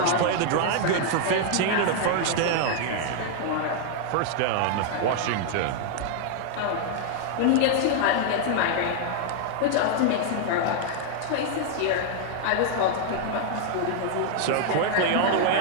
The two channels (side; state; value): both; different; correlation 0.00